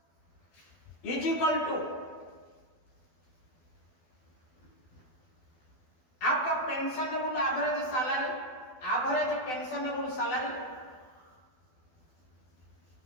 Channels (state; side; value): late; right; 12 ms